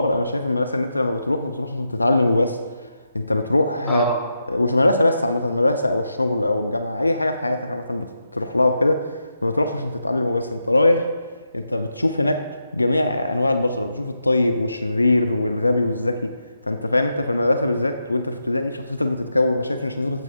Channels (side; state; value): both; inverted; correlation -0.85